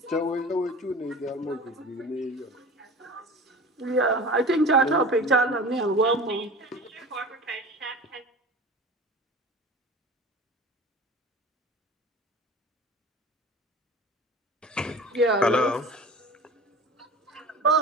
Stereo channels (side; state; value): both; normal; correlation 0.37